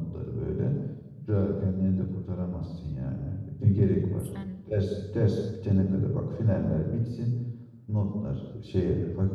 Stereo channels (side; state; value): both; identical; correlation 1.00